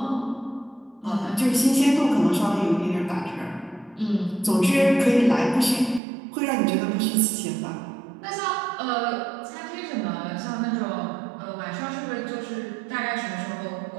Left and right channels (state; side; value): drops out; left; at 6.0 s